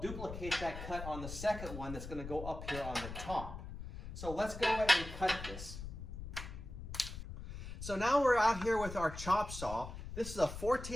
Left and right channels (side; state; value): left; noise; rumble, 9 dB below the sound